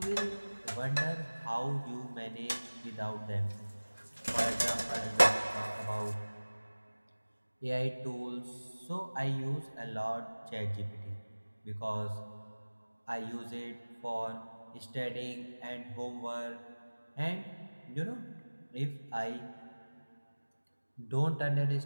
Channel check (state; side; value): inverted; both; correlation -1.00